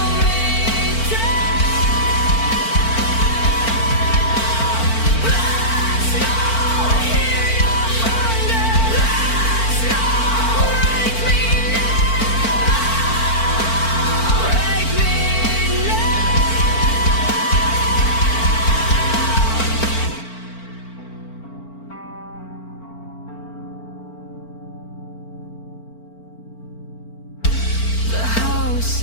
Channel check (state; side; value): late; right; 4.4 ms